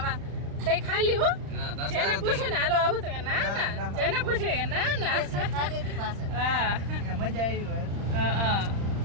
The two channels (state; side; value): late; left; 35 ms